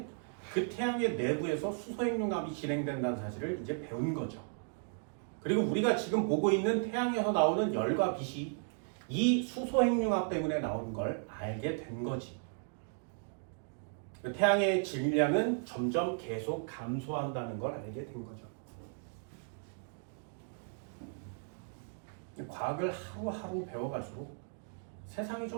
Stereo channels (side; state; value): left; silent; 54 dB below the other